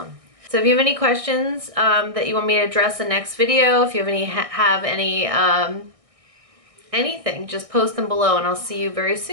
So if you have any questions that you want me to address in the next video, if you have any anything, just post them below, and I'll see you very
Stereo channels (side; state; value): left; late; 1.6 ms